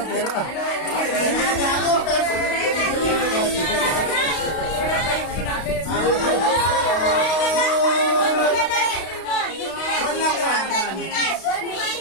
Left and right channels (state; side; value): late; right; 32 ms